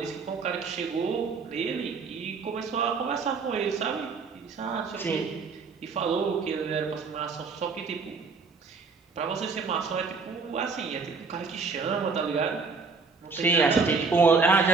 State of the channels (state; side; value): quieter; left; 4.7 dB